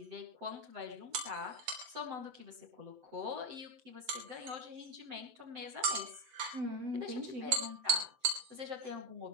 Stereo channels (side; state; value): left; late; 8.0 ms